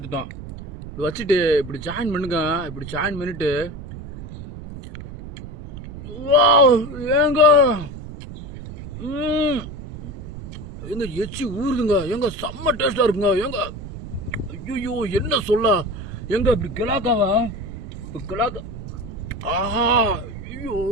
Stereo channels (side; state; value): right; noise; rumble, 11 dB below the sound